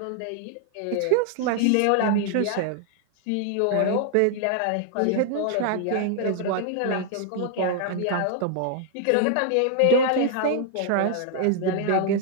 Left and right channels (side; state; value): both; different; correlation 0.00